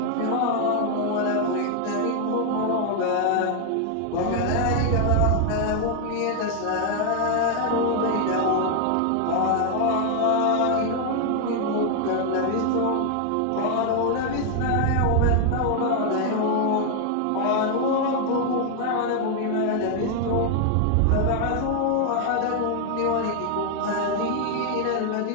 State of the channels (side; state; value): both; different; correlation 0.00